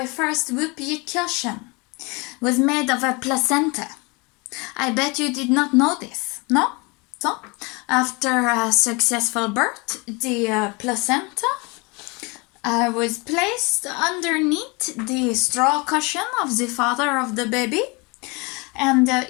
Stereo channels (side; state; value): right; quieter; 28.1 dB